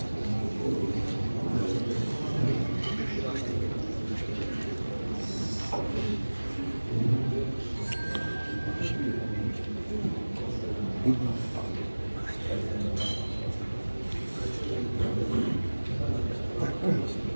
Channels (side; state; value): both; inverted; correlation -1.00